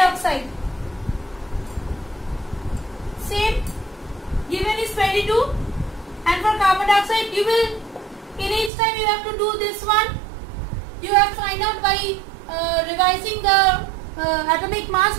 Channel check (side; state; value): left; drops out; at 8.7 s